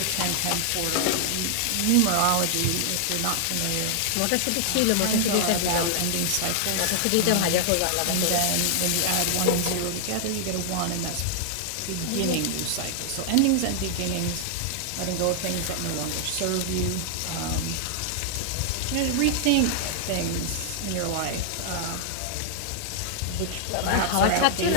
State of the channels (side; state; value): both; different; correlation 0.00